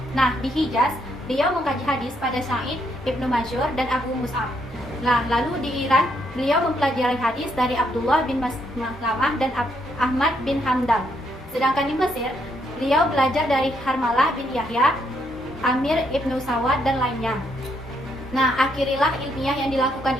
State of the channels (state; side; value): normal; both; correlation 0.74